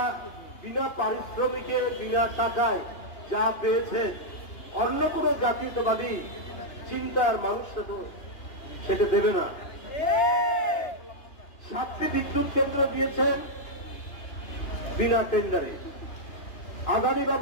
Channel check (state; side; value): late; right; 2.9 ms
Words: বিনা পারিশ্রমিকে, বিনা টাকায় যা পেয়েছে, অন্য কোনো জাতীয়তাবাদী চিন্তার মানুষটা তো সেটা দেবে না। 7টি বিদ্যুৎ কেন্দ্র দিয়েছেন বিনা টেন্ডারে। আদানি